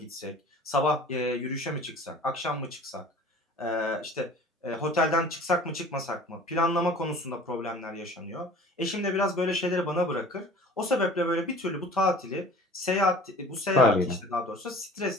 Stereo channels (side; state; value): both; normal; correlation 0.45